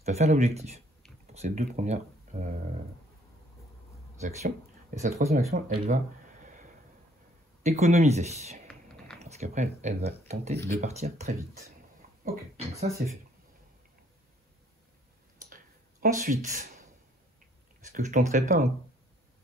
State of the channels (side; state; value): both; normal; correlation 0.62